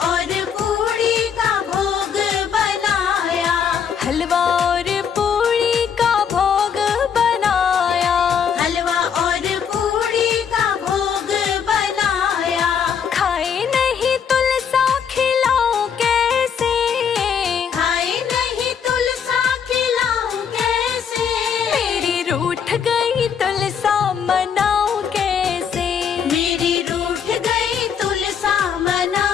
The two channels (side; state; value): right; quieter; 7.4 dB